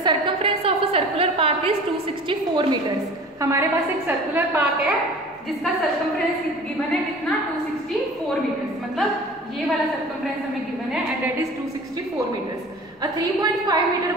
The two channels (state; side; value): normal; both; correlation 0.42